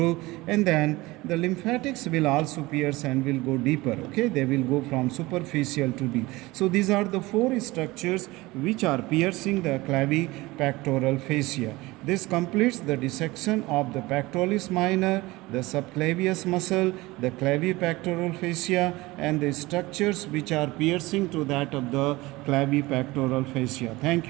and then the lymphatics will also pierce and will go deeper. Okay, they will go from superficial to deep. So these are the 4 structures which are piercing the clavipectoral fascia. This completes the dissection of the pectoralis minor, the subclavius muscle, the clavipectoral fascia, and the structures which are piercing to that of the clavipectoral fascia. Thank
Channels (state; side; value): quieter; left; 20.7 dB